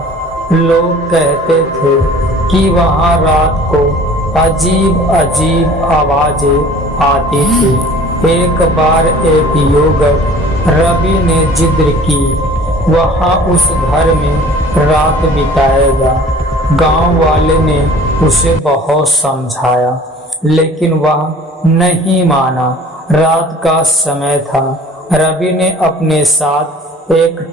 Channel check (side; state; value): both; normal; correlation 0.48